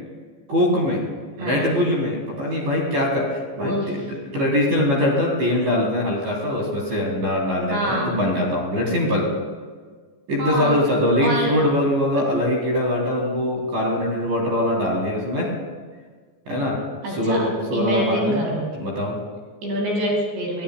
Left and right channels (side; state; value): left; late; 14 ms